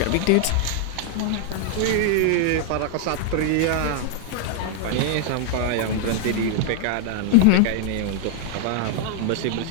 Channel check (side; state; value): both; different; correlation 0.00